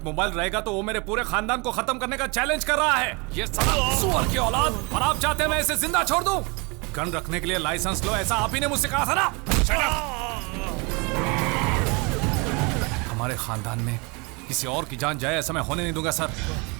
मोबाइल रहेगा तो वो मेरे पूरे खानदान को खत्म करने का चैलेंज कर रहा है। ये साला सुअर की औलाद, और आप चाहते हैं मैं इसे जिंदा छोड़ दूं? गन रखने के लिए लाइसेंस लो, ऐसा आप ही ने मुझसे कहा था ना? हमारे खानदान में किसी और की जान जाए ऐसा मैं होने नहीं दूंगा सर।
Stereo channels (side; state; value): left; quieter; 29.5 dB